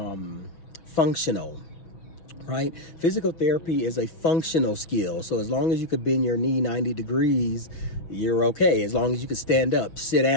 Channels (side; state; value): right; late; 6.2 ms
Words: functional, right? Physical therapy is a functional skill. So as long as you could bend your knee 90 degrees, you're okay. As long as you can stand up, sit